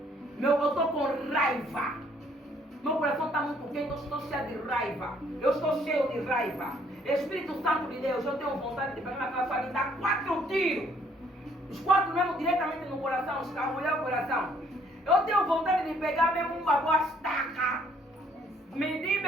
Eu estou com raiva. Meu coração está muito quente, eu estou cheio de raiva. Eu estou cheio de raiva. Espírito Santo de Deus, eu tenho vontade de pegar naquela sua e dar 4 tiros. Os 4 mesmo diretamente no coração, escarrolhar o coração. Eu tenho vontade de pegar mesmo uma boa estaca. Medir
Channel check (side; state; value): both; normal; correlation 0.64